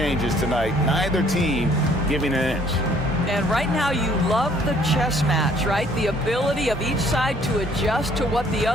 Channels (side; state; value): both; normal; correlation 0.61